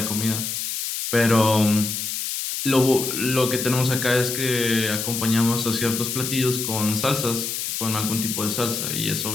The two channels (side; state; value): left; noise; hiss, 3 dB below the sound